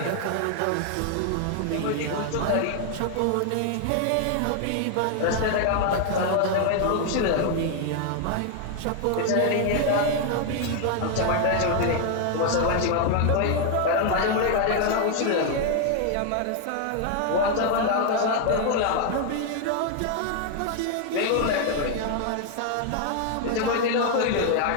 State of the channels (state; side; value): different; both; correlation 0.00